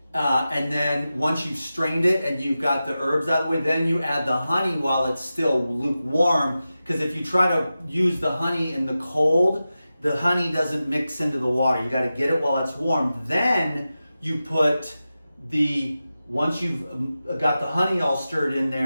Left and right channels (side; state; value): both; inverted; correlation -0.93